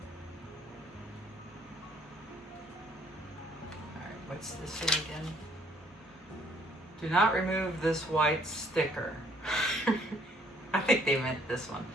Alright, what's this say again? Do not remove this white sticker. I think they meant this one.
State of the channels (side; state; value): both; normal; correlation 0.62